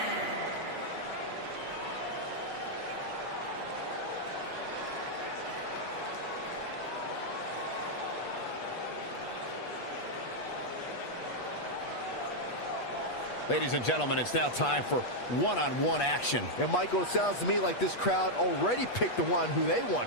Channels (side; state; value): right; late; 8.3 ms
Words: Ladies and gentlemen, it's now time for one-on-one action. And Michael, it sounds to me like this crowd already picked the one who they